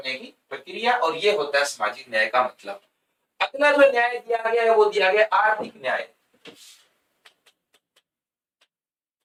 की प्रक्रिया, और ये होता है सामाजिक न्याय का मतलब। अगला जो न्याय दिया गया है वो दिया गया आर्थिक न्याय।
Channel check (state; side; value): identical; both; correlation 1.00